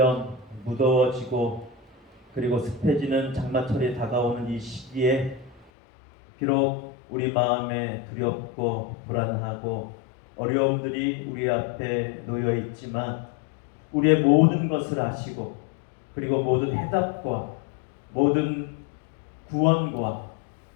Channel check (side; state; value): right; drops out; at 5.7 s